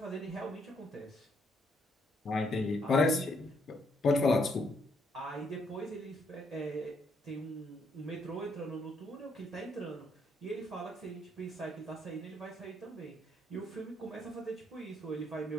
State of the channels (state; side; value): normal; both; correlation 0.72